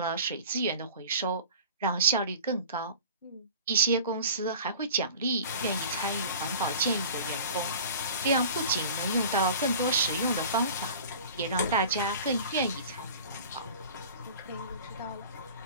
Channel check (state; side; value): inverted; both; correlation -0.41